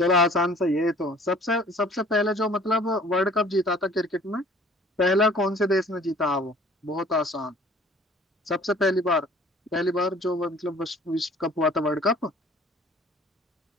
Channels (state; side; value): normal; both; correlation 0.51